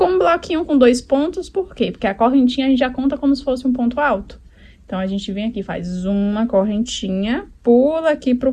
um bloquinho com 2 pontos, por quê? Porque a correntinha a gente já conta como se fosse um ponto alto. Então, a gente vem aqui, faz uma correntinha, pula aqui pro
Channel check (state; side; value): identical; both; correlation 1.00